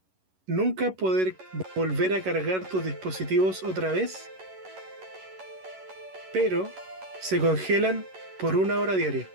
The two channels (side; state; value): left; late; 11 ms